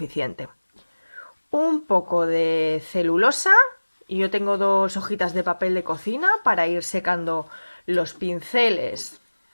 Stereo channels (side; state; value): both; inverted; correlation -1.00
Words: Un poco de celulosa, y yo tengo dos hojitas de papel de cocina para ir secando los pinceles